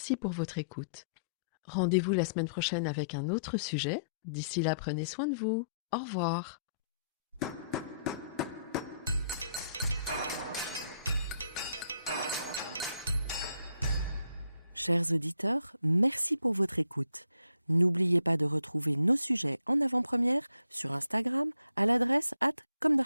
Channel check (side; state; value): both; inverted; correlation -0.70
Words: pour votre écoute. Rendez-vous la semaine prochaine avec un autre sujet. D'ici là, prenez soin de vous. Au revoir. Chers auditeurs, merci pour votre écoute. N'oubliez pas de retrouver nos sujets en avant-première sur Instagram à l'adresse